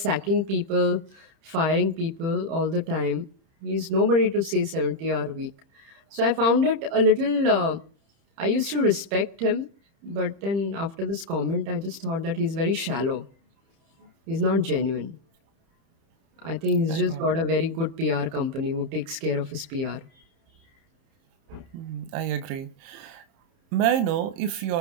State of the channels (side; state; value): left; late; 30 ms